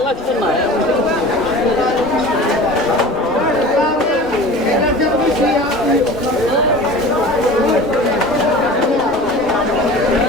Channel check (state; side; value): normal; both; correlation 0.38